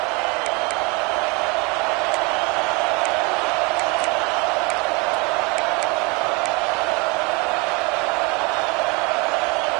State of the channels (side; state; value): left; quieter; 27.8 dB